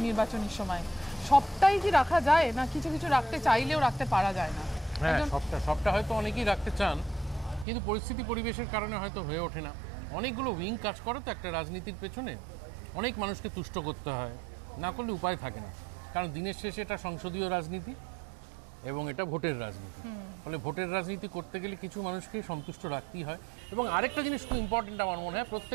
নির্বাচনের সময়, সবটাই কি রাখা যায়, না কিছু কিছু রাখতে চাইলেও রাখতে পারা যায় না? হ্যাঁ, সবটা হয়তো অনেকেই রাখতে চান, কিন্তু পরিস্থিতি পরিবেশের কারণে হয়তো হয়ে ওঠে না। অনেকগুলো উইং কাজ করে তো একটা রাজনীতির পেছনে, অনেক মানুষকে তুষ্ট করতে হয়, না করলে উপায় থাকে না। কারণ দিনের শেষে এটা সংসদীয় রাজনীতি এবং এটা ভোটের রাজনীতি, ফলে ভোটের রাজনীতি করতে গেলে কিছু মানুষকে সন্তুষ্ট রাখতেই হয়। এবং আরেকটা জিনিস খুব ইম্পর্টেন্ট আমার মনে হয়,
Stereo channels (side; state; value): left; drops out; at 7.7 s